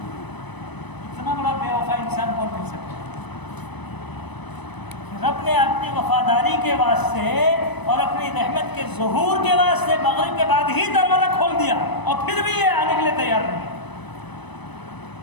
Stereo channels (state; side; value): late; right; 1.0 ms